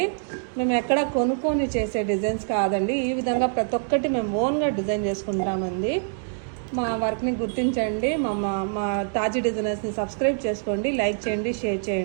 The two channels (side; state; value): left; silent; digital silence